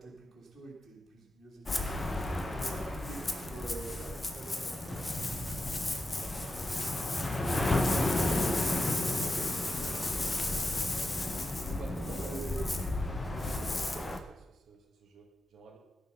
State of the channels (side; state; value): both; normal; correlation 0.89